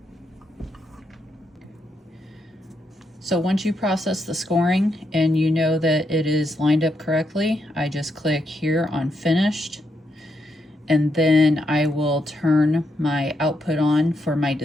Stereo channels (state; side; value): normal; both; correlation 0.80